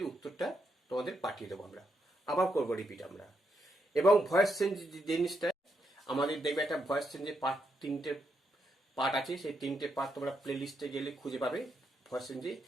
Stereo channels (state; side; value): normal; both; correlation 0.80